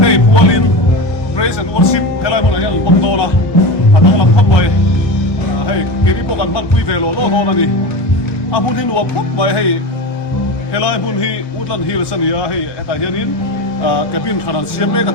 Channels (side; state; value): right; late; 1.2 ms